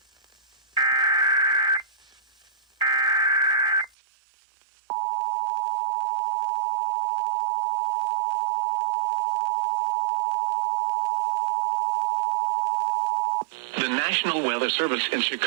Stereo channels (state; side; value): drops out; left; at 4.0 s